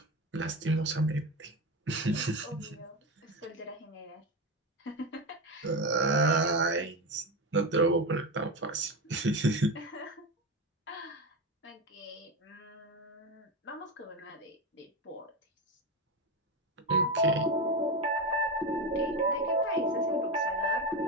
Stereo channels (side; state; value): both; normal; correlation 0.17